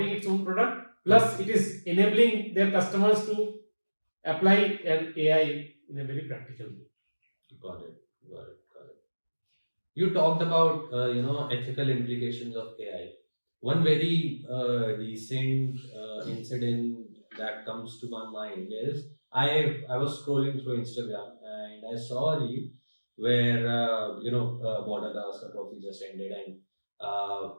its own product, plus it is enabling their customers to apply an AI in a very practical way. Got it. You talked about ethical implications of AI. One very recent incident that comes to my mind is I was scrolling through Instagram and I saw a reel where Border Gavaskar Trophy just ended, and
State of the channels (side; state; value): both; inverted; correlation -1.00